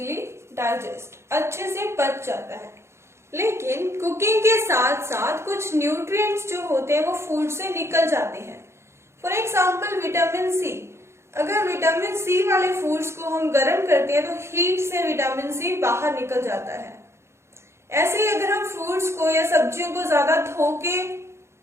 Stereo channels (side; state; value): left; late; 0.13 ms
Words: डाइजेस्ट, अच्छे से पच जाता है। लेकिन कुकिंग के साथ साथ कुछ न्यूट्रिएंट्स जो होते हैं वो फूड से निकल जाते हैं। For example vitamin C. अगर विटामिन सी वाले फूड्स को हम गर्म करते हैं तो हीट से विटामिन सी बाहर निकल जाता है। ऐसे ही अगर हम फ्रूट्स को या सब्जियों को ज्यादा धो के